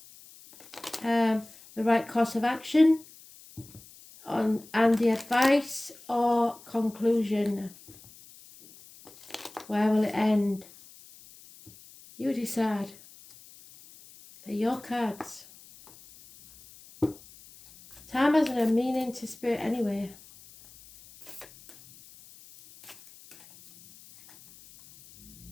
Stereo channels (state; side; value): noise; left; hiss, 22 dB below the sound